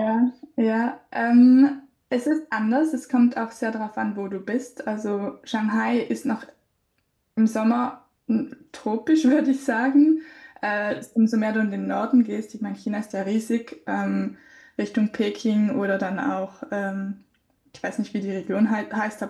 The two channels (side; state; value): both; identical; correlation 1.00